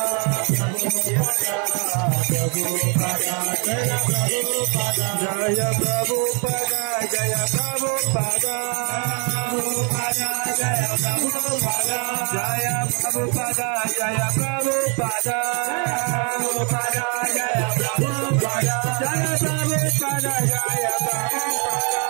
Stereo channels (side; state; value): left; quieter; 36.4 dB